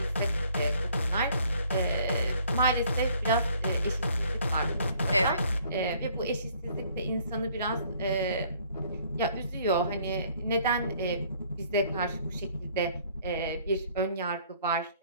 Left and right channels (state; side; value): inverted; both; correlation -0.60